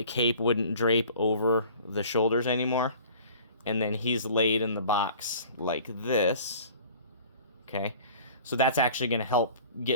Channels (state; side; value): inverted; both; correlation -0.47